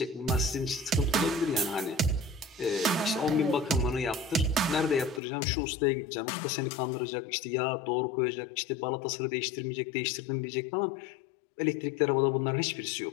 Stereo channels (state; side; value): drops out; right; at 5.2 s